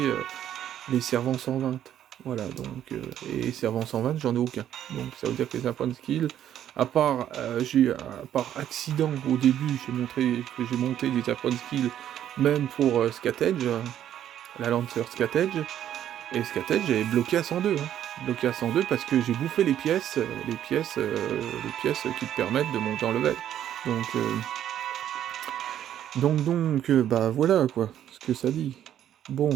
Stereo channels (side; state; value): left; quieter; 10.8 dB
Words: les servants 120. Voilà, donc, et servant 120, j'en ai aucun. Donc ça veut dire que les apprendre skill, à part accident au début, j'ai monté des apprendre skill, même pour Scatedge, la Lancer Scatedge, et Scatedge j'avais bloqué à 102, hein. Bloqué à 102 parce que j'ai bouffé les pièces qui te permettent de monter en level. Donc, bah voilà quoi, ce que ça dit. Bon.